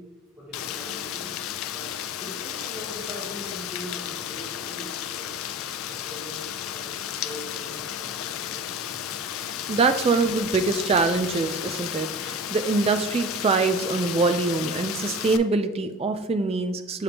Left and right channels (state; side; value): normal; both; correlation 0.36